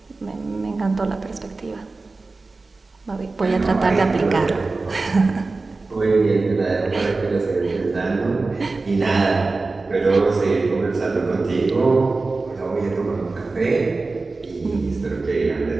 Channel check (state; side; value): quieter; left; 3.6 dB